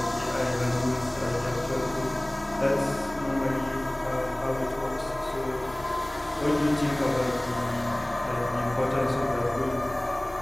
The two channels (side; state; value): left; noise; hum, 21 dB below the sound